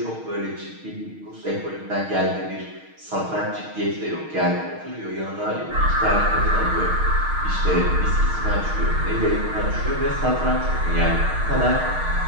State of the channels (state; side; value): late; left; 6.4 ms